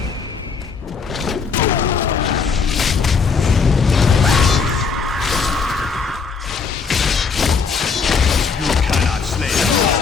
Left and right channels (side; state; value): right; quieter; 5.3 dB